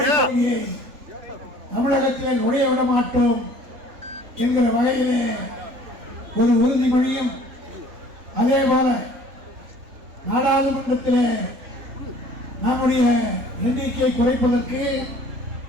கொள்கையை தமிழகத்திலே நுழைய விட மாட்டோம் என்கிற வகையிலே ஒரு உறுதிமொழியும், அதே போல நாடாளுமன்றத்திலே நம்முடைய எண்ணிக்கை குறைப்பதற்கு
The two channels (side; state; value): left; late; 3.7 ms